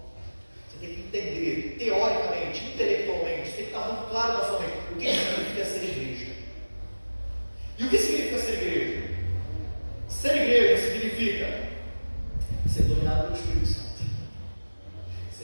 Você tem que entender, teoricamente, intelectualmente, tem que estar muito claro na sua mente o que significa ser igreja. E o que significa ser igreja? Ser igreja significa ser dominado pelo Espírito Santo,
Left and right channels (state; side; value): inverted; both; correlation -1.00